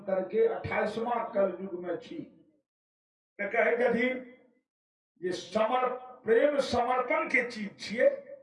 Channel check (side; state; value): both; identical; correlation 1.00